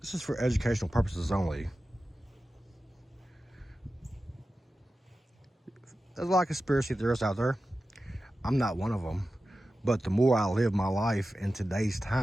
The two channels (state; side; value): normal; both; correlation 0.94